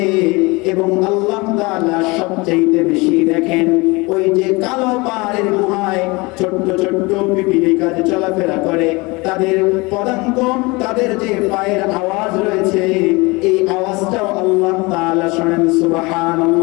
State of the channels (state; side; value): quieter; right; 25.1 dB